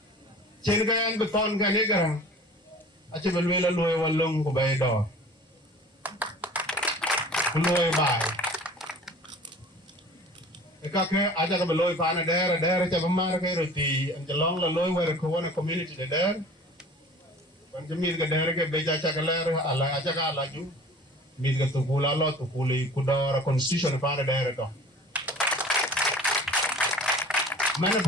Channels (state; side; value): normal; both; correlation 0.44